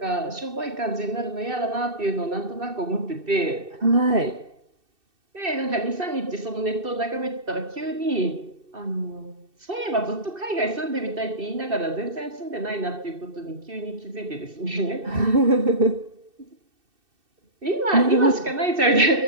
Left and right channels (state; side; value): late; left; 2.6 ms